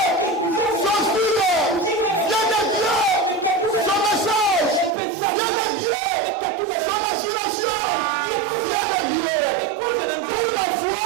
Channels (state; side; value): drops out; left; at 5.0 s